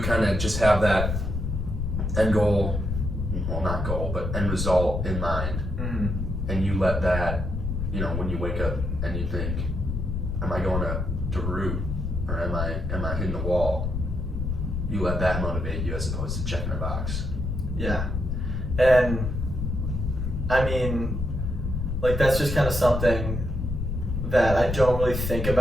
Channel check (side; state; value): left; noise; rumble, 2 dB below the sound